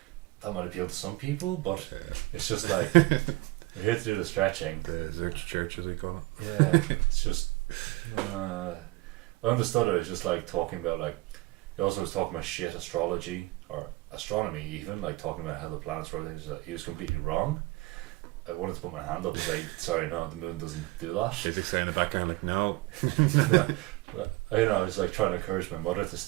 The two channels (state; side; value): quieter; left; 20.9 dB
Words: That might appeal to some people, but it's just like we're here to do the stretching. The Zerch Church, as we call it. Yeah, it's just I understood it. It's just like talking about, like, he also was talking about shit astrology or astronomy, even like talking about how the planets rotate. He was completely wrong. I wanted to put my hand up and say, sorry, no, the moon doesn't do that. Physics there in the background like, no. Yeah. But, I was like trying to encourage my mother to